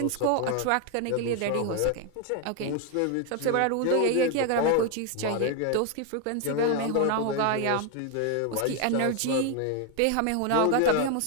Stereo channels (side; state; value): both; different; correlation 0.01